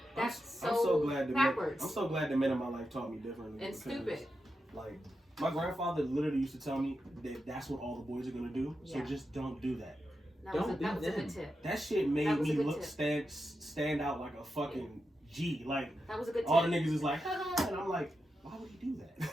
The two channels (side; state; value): both; normal; correlation 0.88